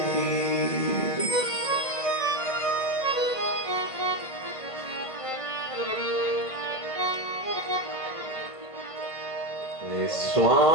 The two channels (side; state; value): right; late; 1.5 ms